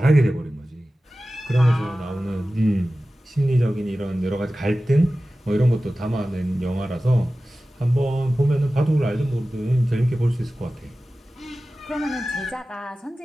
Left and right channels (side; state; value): both; normal; correlation 0.96